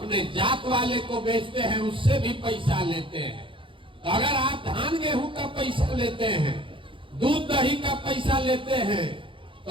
जात वाले को बेचते हैं, उससे भी पैसा लेते हैं। तो अगर आप धान गेहूं का पैसा लेते हैं, दूध दही का पैसा लेते हैं,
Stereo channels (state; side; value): late; left; 0.25 ms